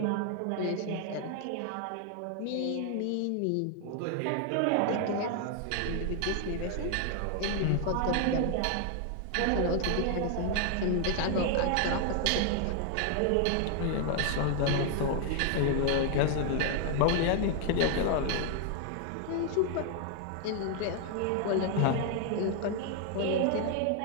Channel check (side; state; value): both; different; correlation 0.00